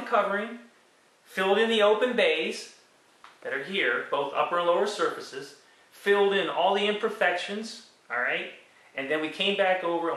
covering, filled in the open bays that are here, both upper and lower surfaces, filled in all the imperfections, alright, and then we came back over and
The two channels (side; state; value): both; identical; correlation 1.00